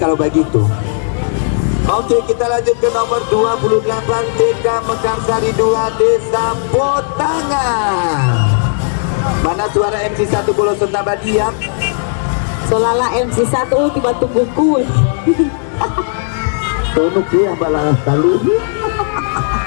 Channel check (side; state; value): right; silent; digital silence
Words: begitu. Oke, kita lanjut ke nomor 28 TK Mekarsari 2 Desa Potangan. Mana suara MC1 Bolo Sentabadian? Selala MC1 tiba tunggu kue. Tonuk yang balas taluh